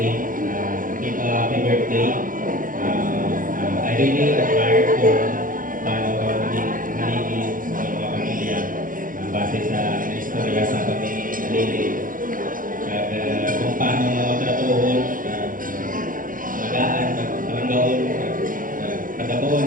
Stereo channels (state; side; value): late; left; 0.40 ms